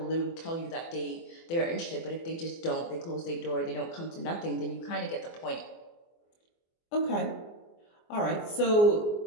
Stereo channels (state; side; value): late; right; 24 ms